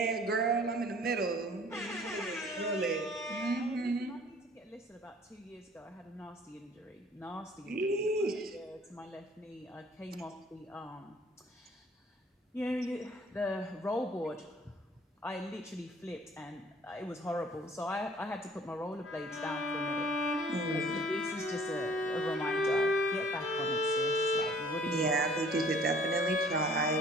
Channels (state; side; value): normal; both; correlation 0.54